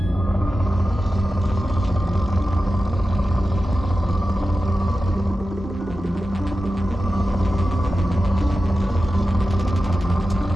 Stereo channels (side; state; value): both; normal; correlation 0.93